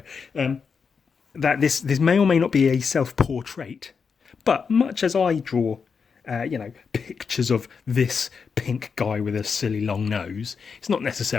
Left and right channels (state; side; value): quieter; right; 5.8 dB